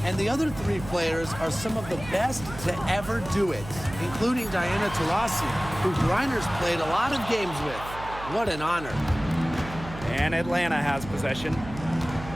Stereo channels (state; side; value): noise; right; hum, 12 dB below the sound